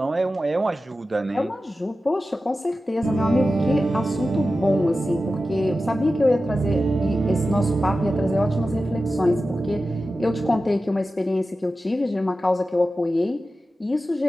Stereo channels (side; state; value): both; normal; correlation 0.93